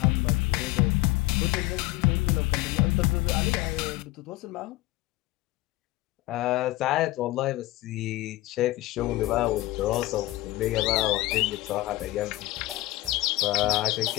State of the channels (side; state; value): right; quieter; 18.5 dB